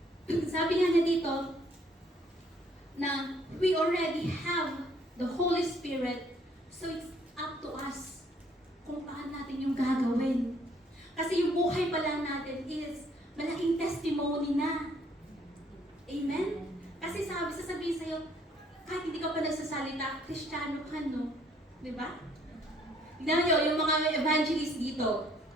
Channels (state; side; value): normal; both; correlation 0.64